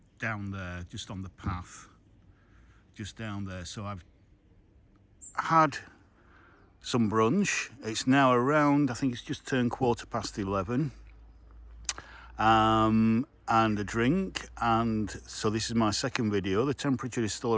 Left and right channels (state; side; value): identical; both; correlation 1.00